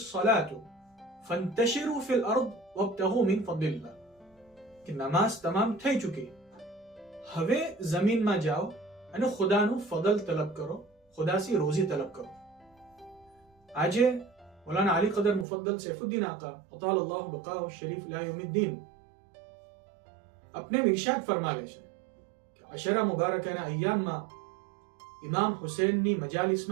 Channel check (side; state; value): left; drops out; at 15.5 s